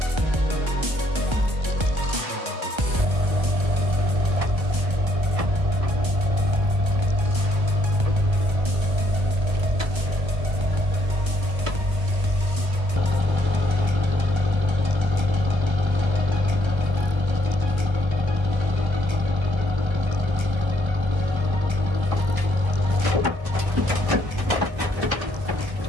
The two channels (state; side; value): late; left; 1.3 ms